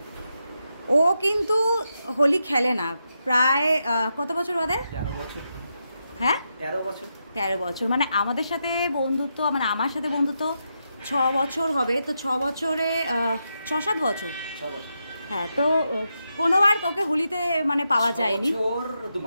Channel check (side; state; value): both; inverted; correlation -0.85